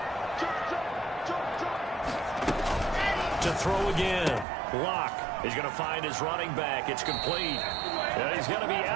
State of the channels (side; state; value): left; drops out; at 4.5 s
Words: To throw again. Locke is going to find his running back. It's complete. And he's going to be